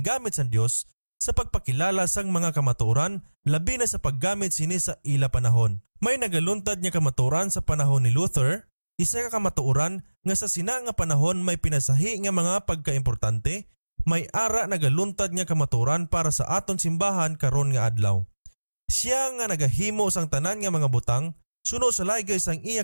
sa Dios sa pagpakilala sang mga kamatuoran labi na sa paggamit sini sa ila panahon. May nagaluntad nga kamatuoran sa panahon ni Luther, isa ka kamatuoran nga sa sina nga panahon may pinasahi nga mga pagkaimportante, may ara nagaluntad nga kamatuoran para sa aton simbahan karon nga adlaw. Siya nga nagahimo sang tanan nga mga butang, suno sa laygay sang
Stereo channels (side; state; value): both; inverted; correlation -1.00